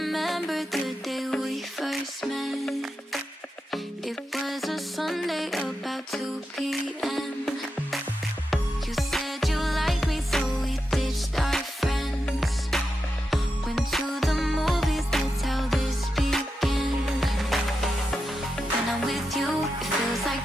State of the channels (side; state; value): both; normal; correlation 0.88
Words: the day we first met? It was a Sunday about 2 p.m. You said you liked me, so we ditched our friends. Went to the movies, that's how this began. When I'm with you, it feels like